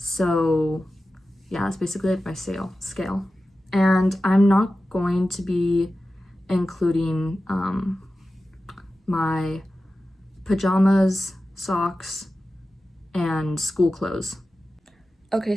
So yeah, that's basically like my scale. And I'm not going to be including my pajamas, socks, and school clothes. Okay,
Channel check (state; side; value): normal; both; correlation 0.94